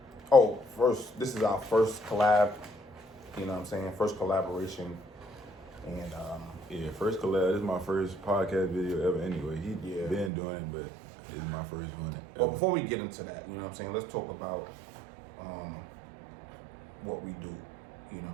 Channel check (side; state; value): left; drops out; at 10.3 s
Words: this is our first collab, you know what I'm saying? First collaboration. And, yeah, first collab. This is my first podcast video ever anyway. He been doing it, but it's my first one ever. Well, before we get into that, you know what I'm saying? Let's talk about what we do. You know what